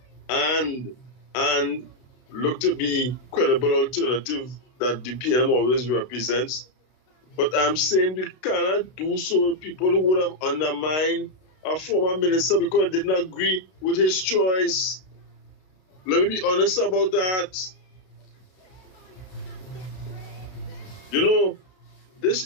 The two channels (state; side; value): late; right; 32 ms